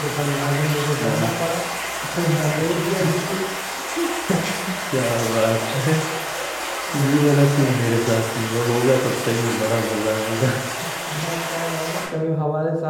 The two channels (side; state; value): both; identical; correlation 1.00